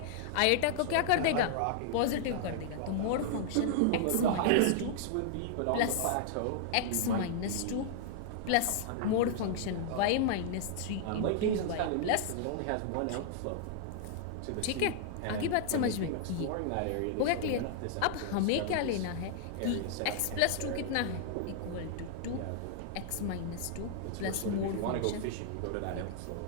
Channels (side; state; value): both; different; correlation -0.01